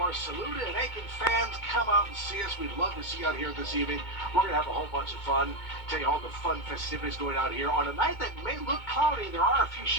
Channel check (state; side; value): late; right; 2.2 ms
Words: Saluda and Aiken fans, come out and see us. We'd love to see you out here this evening. We're going to have a whole bunch of fun. Tell you all the fun festivities going out here on a night that may look cloudy. There are a few